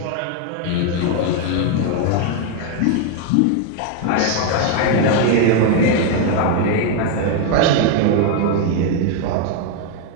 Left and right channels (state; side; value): different; both; correlation 0.01